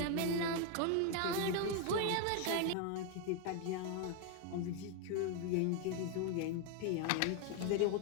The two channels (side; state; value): both; different; correlation 0.01